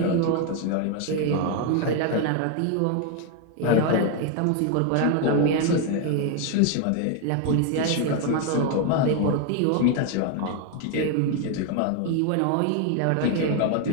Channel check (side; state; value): both; different; correlation 0.01